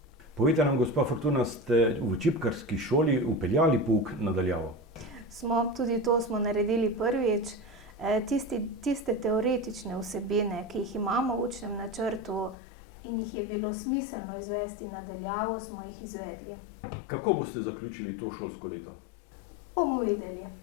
Povejte nam, gospa Fortuna, ste v čipkarski šoli vpeljali pouk na daljavo? Tudi to smo naredili prvič. Tiste teoretične vsebine, ki jih imamo v učnem načrtu in jih je bilo smiselno izvesti na daljavo, smo jih izvedli. Kako boste zaključili to šolsko leto? Bomo videli.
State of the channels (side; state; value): right; drops out; at 12.6 s